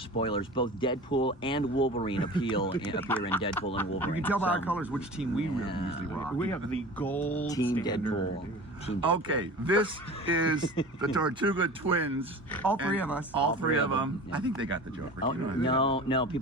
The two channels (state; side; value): normal; both; correlation 0.37